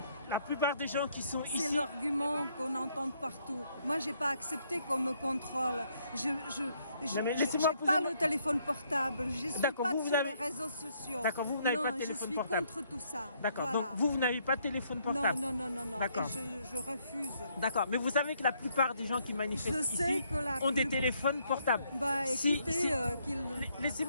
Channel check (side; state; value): both; inverted; correlation -0.71